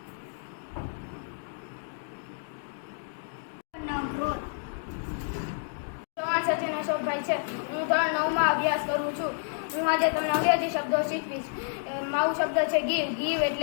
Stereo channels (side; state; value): right; silent; digital silence